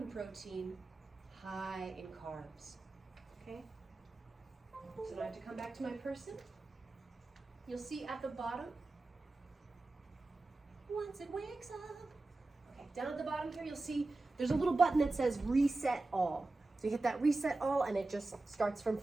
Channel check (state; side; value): quieter; left; 3.1 dB